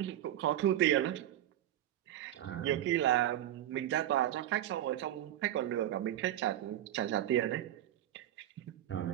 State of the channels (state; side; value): quieter; left; 12.5 dB